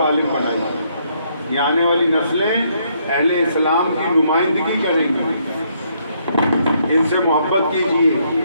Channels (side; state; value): both; inverted; correlation -0.71